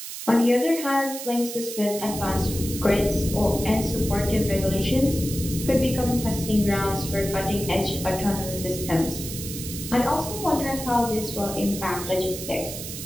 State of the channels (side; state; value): right; noise; hiss, 8 dB below the sound